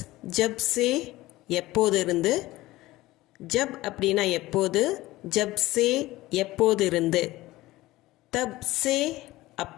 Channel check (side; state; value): right; quieter; 17.9 dB